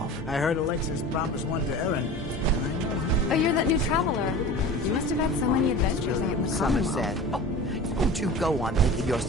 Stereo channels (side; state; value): both; normal; correlation 0.36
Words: I heard Alexis promised one to Erin. Oh, you're that new traveler. You must have had so many adventures out in the Somerset. Oh, don't you go on thinking you're